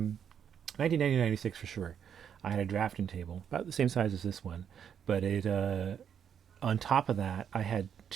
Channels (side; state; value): left; quieter; 8.3 dB